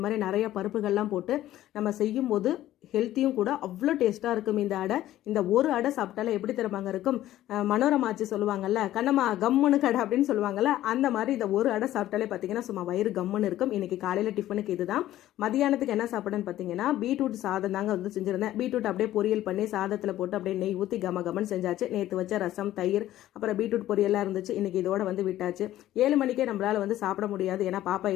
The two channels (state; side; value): quieter; right; 13.9 dB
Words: மாதிரி நிறைய பருப்புகள்லாம் போட்டு நம்ம செய்யும் போது ஹெல்த்தியும் கூட. அவ்வளோ டேஸ்ட்டாக இருக்கும் இந்த அடை. இந்த ஒரு அடை சாப்பிட்டாலே எப்படி தருவாங்க இருக்கும், மனோரமாச்சு சொல்லுவாங்கல்ல, கண்ணம்மா கம்முன்னு கடை அப்படின்னு சொல்லுவாங்கல்ல, அந்த மாதிரி இந்த ஒரு அடை சாப்பிட்டாலே பார்த்தீங்கன்னா சும்மா வயிறு கம்முன்னு இருக்கும். இன்னைக்கு காலையில் டிஃபனுக்கு இதுதான். மதியானத்துக்கு என்ன சாப்பிடுன்னு பார்த்தீங்கன்னா பீட்ரூட் சாதம் தாங்க செஞ்சிருந்தேன். பீட்ரூட் அப்படியே பொரியல் பண்ணி சாதத்தில் போட்டு அப்படியே நெய் ஊற்றி கமன்னு செஞ்சாச்சு. நேற்று வச்ச ரசம், தயிர், அப்புறம் பீட்ரூட் பொரியல்லாம் இருந்துச்சு. இன்னைக்கு இதோட விட்டாச்சு. 7 மணிக்கே நம்மளால சாப்பிட முடியாது. ஏன்னா பாப்பா